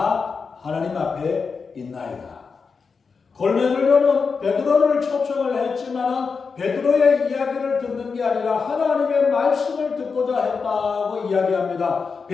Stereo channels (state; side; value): quieter; right; 5.2 dB